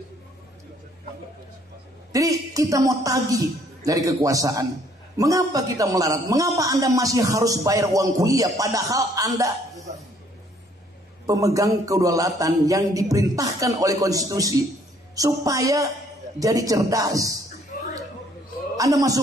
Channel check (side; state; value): both; normal; correlation 0.63